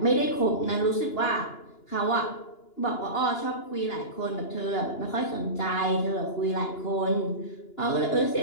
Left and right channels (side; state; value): right; late; 2.9 ms